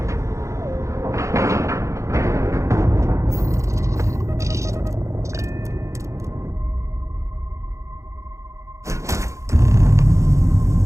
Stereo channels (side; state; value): left; late; 0.15 ms